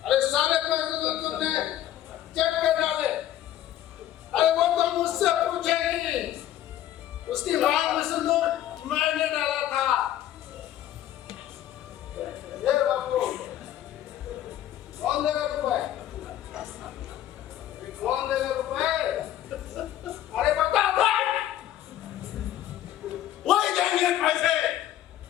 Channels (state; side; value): quieter; right; 12.3 dB